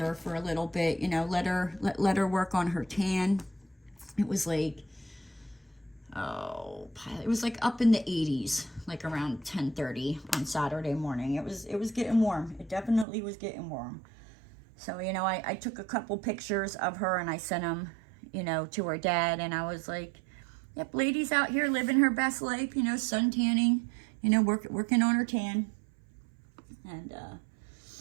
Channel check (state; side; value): drops out; left; at 13.1 s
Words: for a little bit, let her work on her tan. It was like, it was like up in the 80s, like around 10:30 on Saturday morning. It was getting warm. It definitely was getting warm. So, I took a couple pictures of her and I sent them, to her dad, and I was like, yep, Lady's out here living her best life, sun tanning, working on her tan. And,